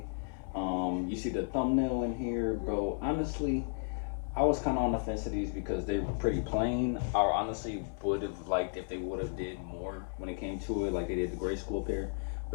You see the thumbnail in here, bro. Honestly, I was kind of on the fence of these because they were pretty plain. I honestly would have liked if they would have did more when it came to it, like they did the grade school pair.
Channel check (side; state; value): right; silent; 55 dB below the other